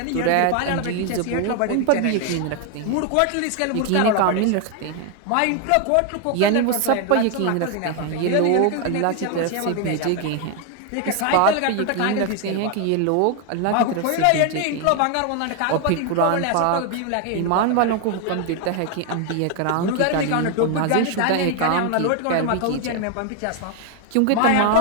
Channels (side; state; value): both; different; correlation 0.01